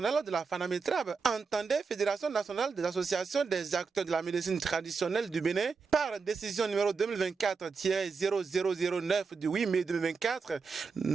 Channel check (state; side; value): quieter; left; 5.1 dB